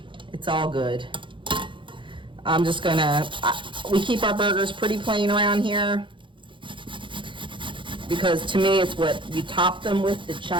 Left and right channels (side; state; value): left; late; 0.24 ms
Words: It's all good. I'm just gonna, we keep our burgers pretty plain around here because to me it's what you top them with that